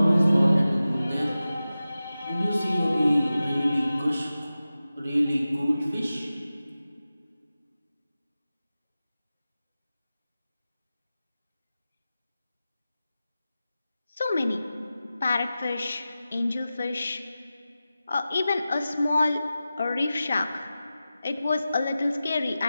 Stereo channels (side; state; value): both; inverted; correlation -0.94